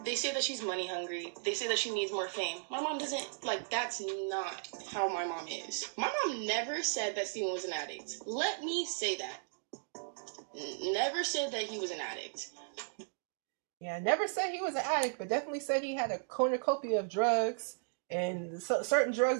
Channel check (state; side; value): silent; left; digital silence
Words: They say that she's money hungry. They say that she needs more fame. My mom doesn't, that's not how my mom is. My mom never said that Steven was an addict. Let me say that. Never said that he was an addict. Yeah, never said he was an addict, but definitely said he had a cornucopia of drugs and certain drugs